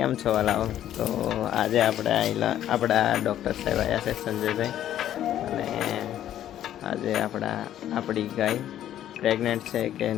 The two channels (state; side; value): quieter; right; 11.6 dB